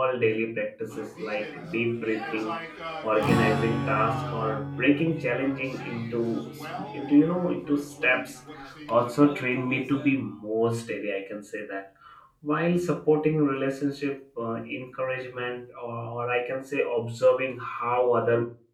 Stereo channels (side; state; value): both; identical; correlation 1.00